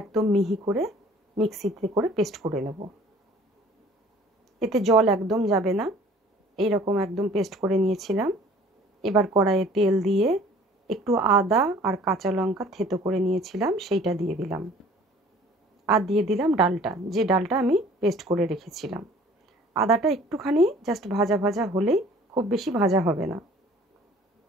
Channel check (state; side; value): normal; both; correlation 0.51